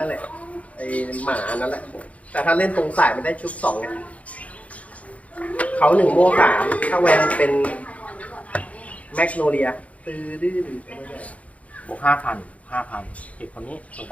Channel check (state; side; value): late; right; 0.067 ms